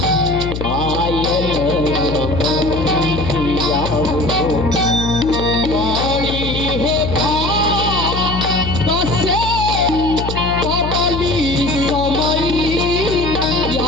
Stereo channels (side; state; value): left; noise; hum, 5 dB below the sound